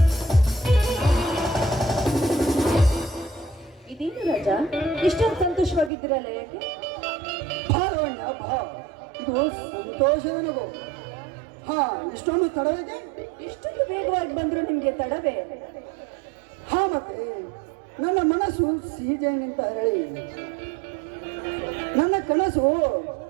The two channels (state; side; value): drops out; left; at 5.9 s